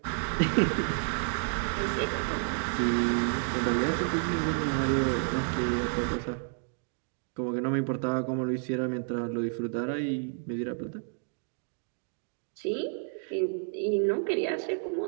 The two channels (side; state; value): left; silent; 58 dB below the other